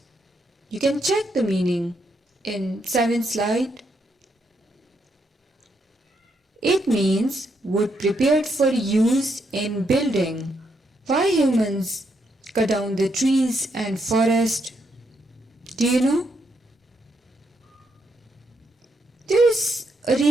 You can check the meaning in 7th slide. It means wood prepared for use in building. Why humans cut down the trees and forest? Do you know? There is a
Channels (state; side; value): normal; both; correlation 0.78